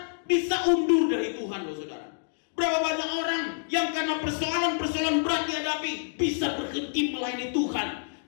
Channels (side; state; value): right; silent; digital silence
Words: bisa undur dari Tuhan, loh saudara. Berapa banyak orang yang karena persoalan-persoalan berat dihadapi bisa berhenti melayani Tuhan.